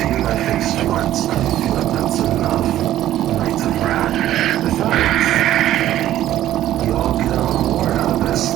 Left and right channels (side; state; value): left; quieter; 13.1 dB